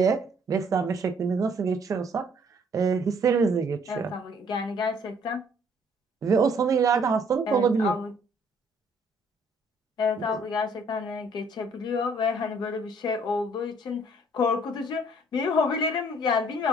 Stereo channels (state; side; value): normal; both; correlation 0.61